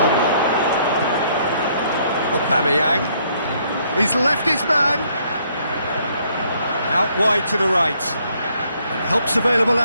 Aubameyang. He's left his man. Out wide to the right. And help's available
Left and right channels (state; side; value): inverted; both; correlation -0.67